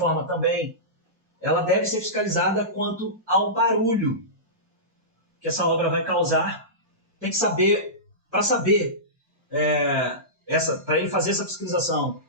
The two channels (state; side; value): normal; both; correlation -0.19